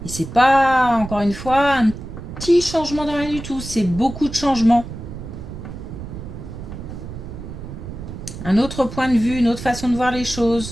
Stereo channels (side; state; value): right; noise; rumble, 10 dB below the sound